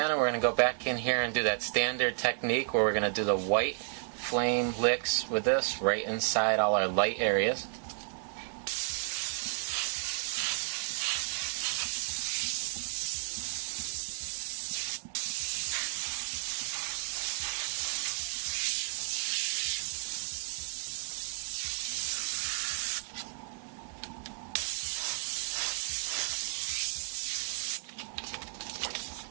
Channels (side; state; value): left; silent; 56 dB below the other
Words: and we're going to go back in here and do that standard technique where we're going to do the white flame licks with this right inside all our light areas.